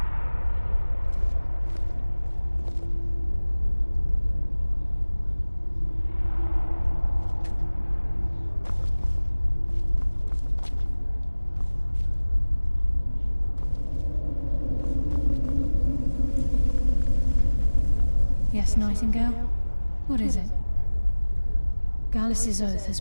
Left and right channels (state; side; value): inverted; both; correlation -1.00